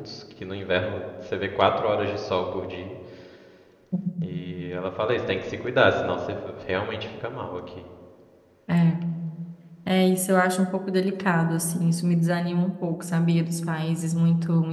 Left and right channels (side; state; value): both; identical; correlation 1.00